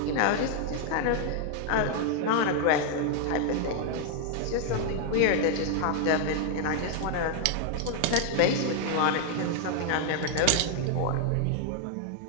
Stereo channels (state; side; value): different; both; correlation 0.00